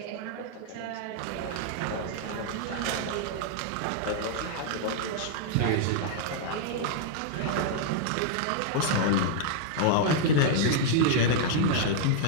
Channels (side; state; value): both; different; correlation -0.01